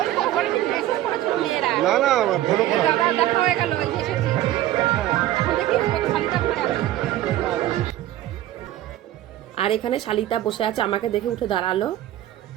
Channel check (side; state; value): left; quieter; 13.8 dB